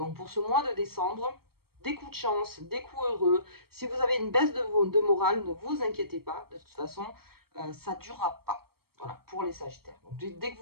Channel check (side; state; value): left; late; 0.94 ms